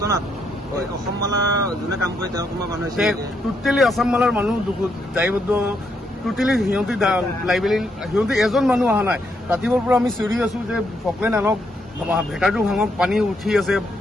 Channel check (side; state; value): both; normal; correlation 0.77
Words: অসম মালা যোনে কাম কৰে তেওঁ কোনোবা মানুহ টোটেলি আসাম মালাৰ মানুহ দায়বদ্ধ টোটেলি সিহঁতি এজন মানুহ অহা নাই ৰাতিপুৱাৰ পৰা আমি চিঞৰি আছো যে ফকলেন আনক ভেটাৰটো ভাঙক পানী উঠি আছে